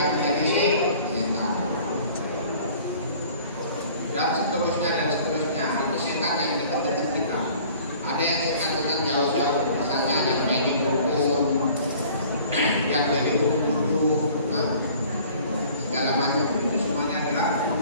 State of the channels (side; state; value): both; inverted; correlation -0.50